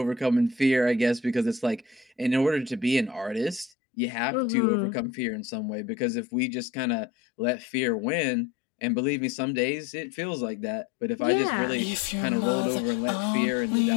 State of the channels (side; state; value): right; drops out; at 3.7 s